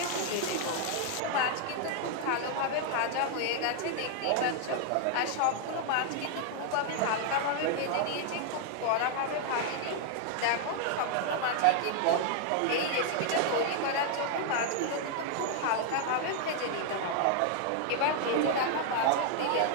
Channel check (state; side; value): different; both; correlation 0.00